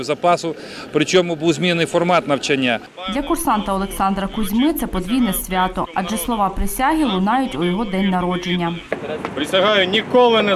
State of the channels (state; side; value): identical; both; correlation 1.00